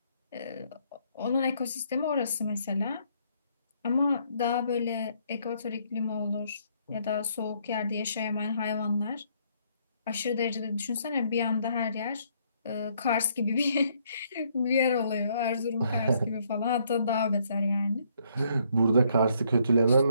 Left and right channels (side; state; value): both; inverted; correlation -0.69